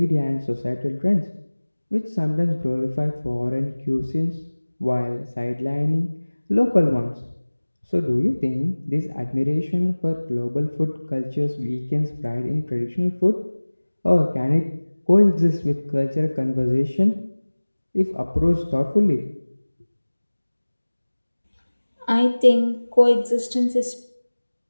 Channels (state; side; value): inverted; both; correlation -1.00